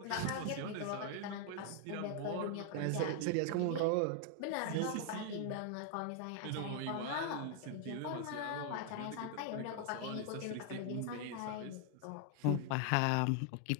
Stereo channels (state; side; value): different; both; correlation 0.00